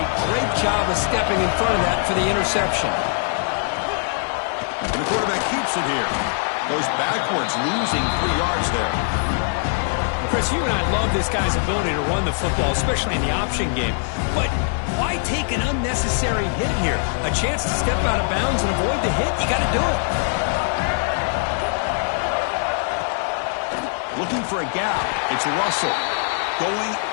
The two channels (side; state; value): right; silent; digital silence